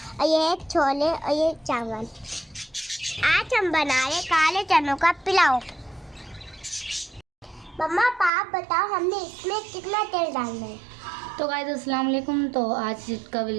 ये है छोले और ये चावल। आज हम बना रहे काले चनों का पुलाव। मम्मा आप बताओ हमने इसमें कितना तेल डालना है? तो गाइस अस्सलाम वालेकुम। तो आज का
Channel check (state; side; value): drops out; left; at 8.3 s